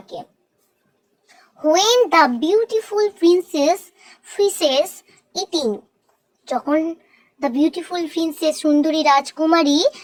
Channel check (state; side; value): identical; both; correlation 1.00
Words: When the beautiful princess finishes eating, যখন the beautiful princess সুন্দরী রাজকুমারী